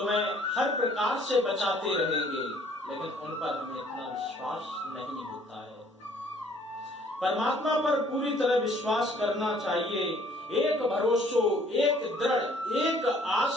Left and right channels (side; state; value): both; normal; correlation 0.59